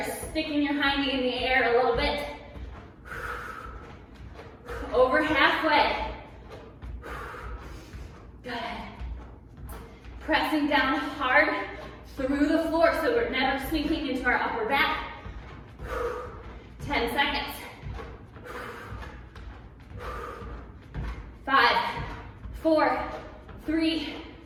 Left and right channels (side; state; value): both; identical; correlation 1.00